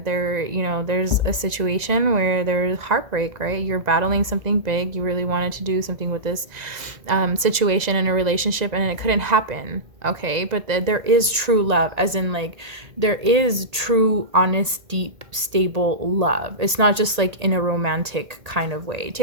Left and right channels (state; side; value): late; left; 2.0 ms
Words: you know, there's a situation where there's heartbreak, right? You're battling something big, you really wanted to do something with this situation in a relationship, and it couldn't happen. Okay, but there is true love, as in like there is true, honest, deep, stable love. It's not just like in a romantic kind of way.